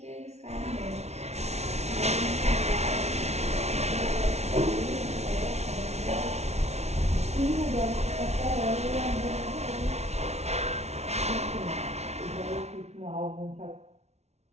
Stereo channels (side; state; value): left; late; 0.31 ms